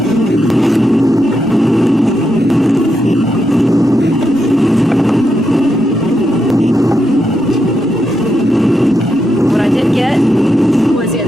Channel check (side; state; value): right; noise; hum, 29 dB below the sound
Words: What I did get was the